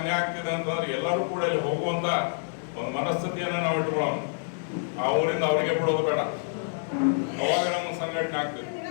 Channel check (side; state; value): right; silent; digital silence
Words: ಆಗ್ತಿದೆ ಅಂತಂದ್ರೆ ಎಲ್ಲರೂ ಕೂಡ ಇಲ್ಲಿ ಹೋಗುವಂತ ಒಂದು ಮನಸ್ಥಿತಿಯನ್ನ ನಾವು ಇಟ್ಕೊಳ್ಳೋಣ. ಆ ಊರಿಂದ ಅವರಿಗೆ ಬಿಡೋದು ಬೇಡ. ಅವಾಗ ನಮ್ಮ ಸಂಘಟನೆ ಆಗ್ತದೆ.